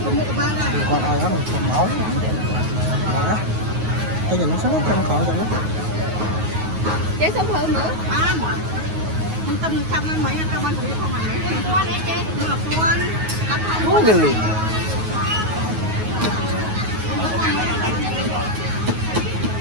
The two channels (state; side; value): late; left; 9.4 ms